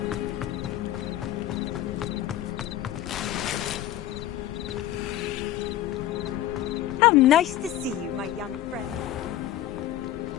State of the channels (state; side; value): quieter; right; 12.8 dB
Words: How nice to see you, my young friend.